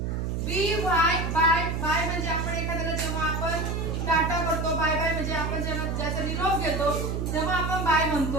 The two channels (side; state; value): right; noise; hum, 1 dB below the sound